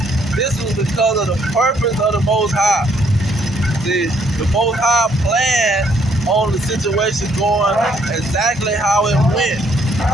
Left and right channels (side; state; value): both; normal; correlation 0.67